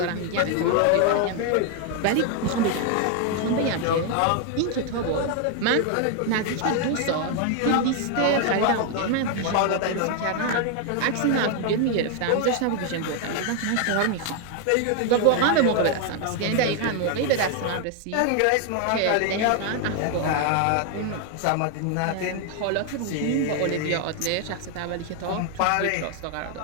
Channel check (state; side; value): different; both; correlation 0.00